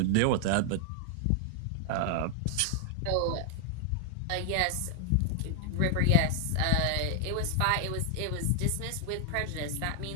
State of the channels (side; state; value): both; different; correlation 0.00